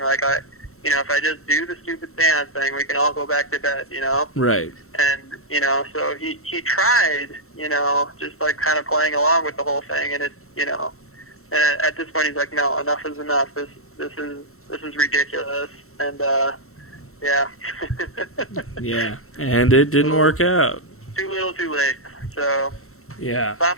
if I just do the stupid seance thing, we can all go back to bed, you know? Right. And, you know, so he tried, you know, just like kind of playing along with the whole thing, and it's, you know, and at this point he's like, no, enough is enough. This is ridiculous. And yeah. Yeah, and it didn't work out. Too little, too late. So yeah,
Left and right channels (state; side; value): late; right; 0.63 ms